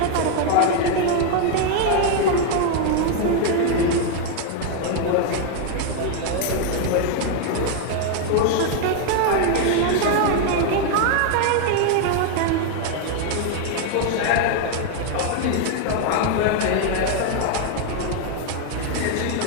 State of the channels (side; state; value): both; different; correlation 0.00